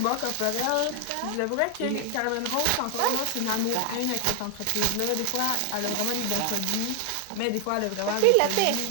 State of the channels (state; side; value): different; both; correlation 0.00